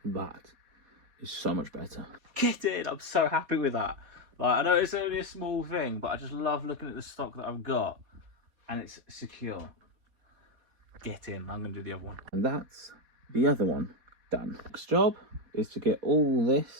That is so much better. Get in, I'm so happy with that. Like, I know it's only a small thing, but I just love looking at the stock that I've got, and it's secure. Get in, I'm gonna do the other one. And that's the other one done. Next job is to get all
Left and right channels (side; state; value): left; late; 4.2 ms